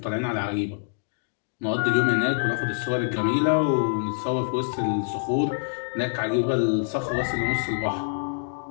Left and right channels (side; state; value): right; silent; digital silence